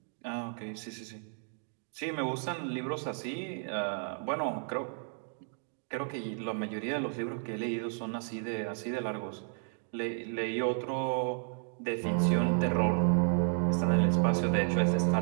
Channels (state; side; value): silent; left; 56 dB below the other